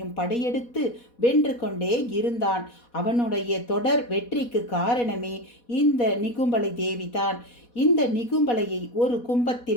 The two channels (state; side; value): late; right; 4.1 ms